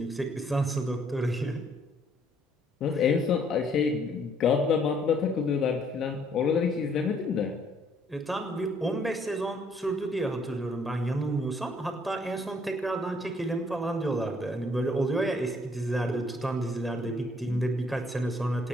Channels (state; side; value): normal; both; correlation 0.65